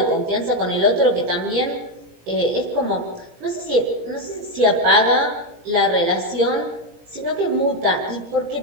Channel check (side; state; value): left; late; 17 ms